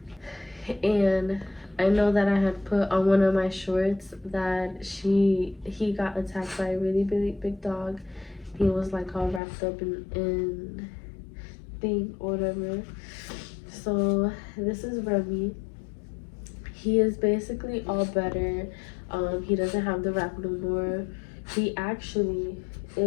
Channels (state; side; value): drops out; right; at 9.4 s